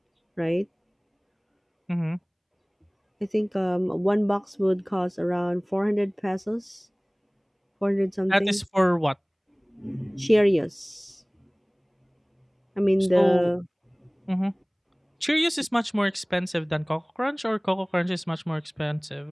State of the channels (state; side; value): identical; both; correlation 1.00